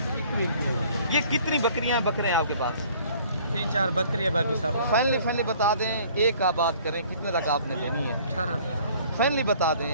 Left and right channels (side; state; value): both; inverted; correlation -0.54